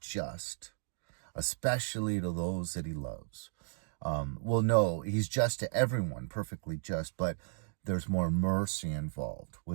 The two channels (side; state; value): left; silent; digital silence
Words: just, especially to those that he loves. No, he's just to everyone, perfectly just, but there's more mercy involved